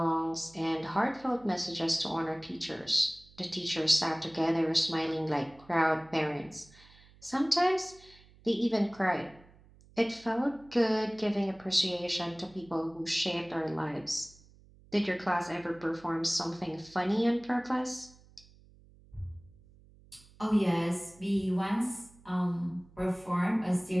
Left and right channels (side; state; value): right; noise; hum, 26 dB below the sound